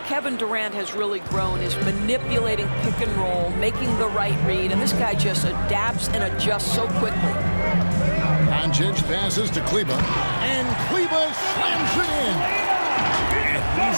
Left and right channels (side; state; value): both; inverted; correlation -1.00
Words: Kevin Durant has really grown, is manipulating pick and roll, making the right read, and this guy just adapts and adjusts so quickly. Doncic passes to Kleber, and Kleber slams it in. And